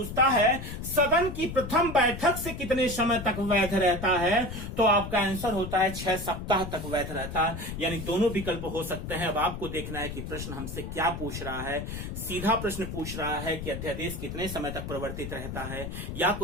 है सदन की प्रथम बैठक से कितने समय तक वैध रहता है, तो आपका आंसर होता है 6 सप्ताह तक वैध रहता है। यानी दोनों विकल्प हो सकते हैं। अब आपको देखना है कि प्रश्न हमसे क्या पूछ रहा है। सीधा प्रश्न पूछ रहा है कि अध्यादेश कितने समय तक परिवर्तित रहता है, या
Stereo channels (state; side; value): noise; left; rumble, 7 dB below the sound